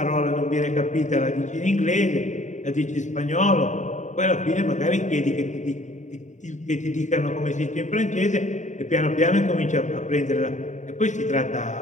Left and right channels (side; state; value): right; late; 0.35 ms